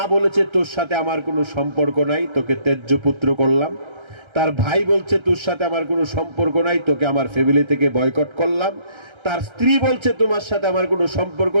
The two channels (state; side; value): late; left; 1.3 ms